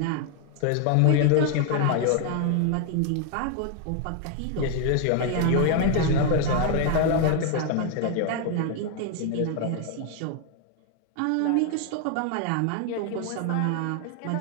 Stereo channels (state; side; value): different; both; correlation 0.00